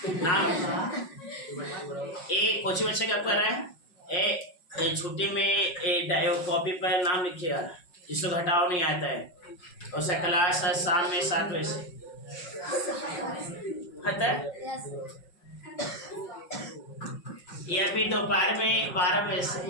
नाम एक कोचिंग बच्चे क्या कर रहे हैं, छुट्टी में कॉपी पर नाम लिखिएगा जिसको घटाव नहीं आता है। और उसका क्लास है शाम में 7 बजे से है, या फिर दोपहर में 12 बजे से।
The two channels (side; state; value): right; late; 5.5 ms